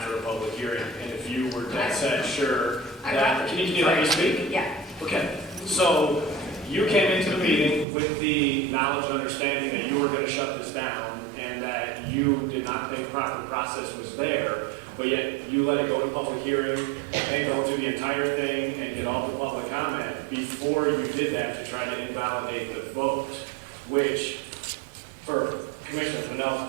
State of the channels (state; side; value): drops out; left; at 7.9 s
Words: a public hearing, and if you were dead set sure that, can you let me speak? Yeah. Okay, so you came into the meeting with the knowledge and understanding that you were gonna shut this down and that you did not think proper process was there, but yet you let it go to public hearing and go through the entire thing and get all the public comment before you did that to try to invalidate the vote, which, for Commissioner Fennell's